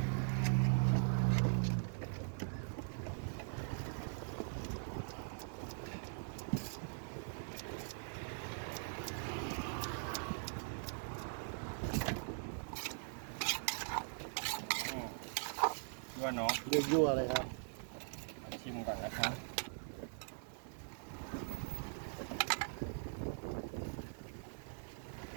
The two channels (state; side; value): silent; left; digital silence